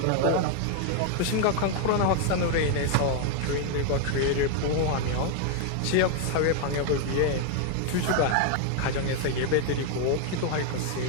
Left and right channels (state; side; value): different; both; correlation 0.00